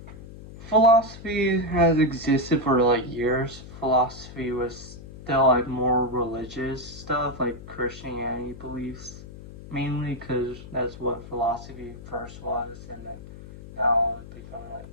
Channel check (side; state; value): left; noise; hum, 15 dB below the sound